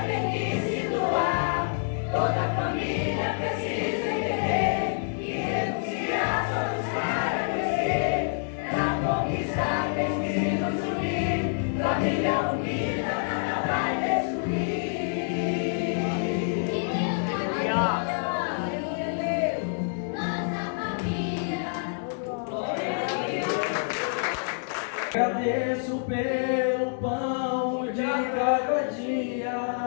tem que se doar. Toda família precisa entender que renunciar só nos para crescer. Pra conquistar temos que nos unir. Família unida nada vai destruir. Agradeço pelo pão de cada dia.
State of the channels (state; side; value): silent; right; digital silence